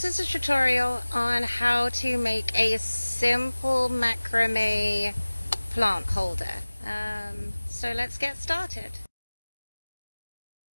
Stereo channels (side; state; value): both; inverted; correlation -1.00